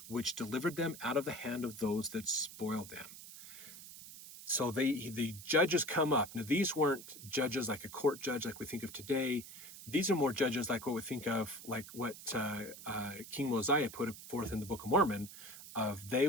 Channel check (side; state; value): right; noise; hiss, 14 dB below the sound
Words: which delivered them out of the hand of those that spoiled them. So the judges come up. Now, these weren't judges like a court judge like we think of today. These are more judges like what we think of, like what King Mosiah put forth in the Book of Mormon, of they